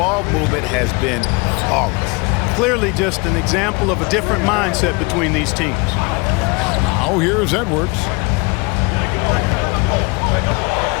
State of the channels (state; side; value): quieter; right; 27.8 dB